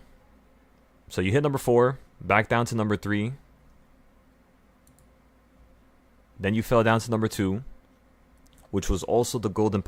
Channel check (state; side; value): identical; both; correlation 1.00